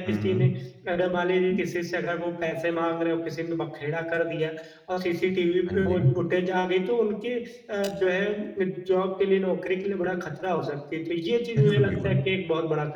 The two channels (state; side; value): identical; both; correlation 1.00